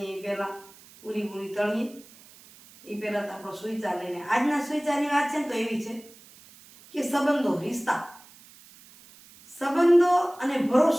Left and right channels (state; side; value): noise; right; hiss, 23 dB below the sound